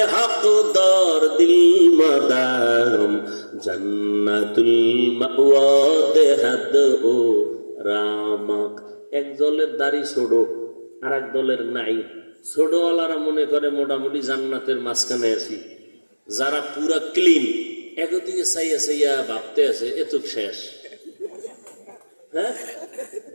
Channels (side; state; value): both; inverted; correlation -1.00